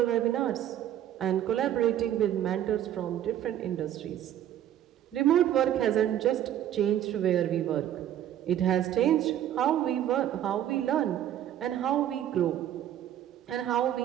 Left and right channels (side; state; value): left; quieter; 11.3 dB